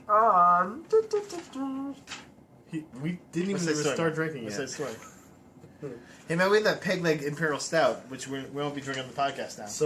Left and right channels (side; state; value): both; identical; correlation 1.00